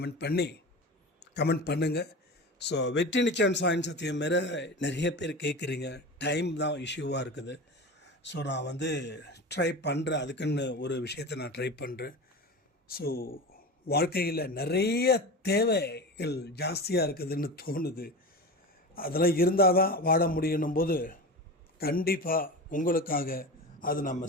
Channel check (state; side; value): normal; both; correlation 0.28